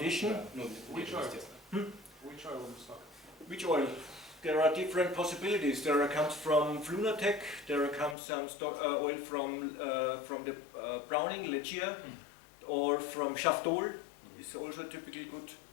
Да, ну, естественно. Which oil in stock? Which oil? There are different possibilities. There comes from Flunatec. There comes some stock, oil from the Browning, Legia, or from Shaftol. It's also typically good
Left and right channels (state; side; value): drops out; right; at 8.2 s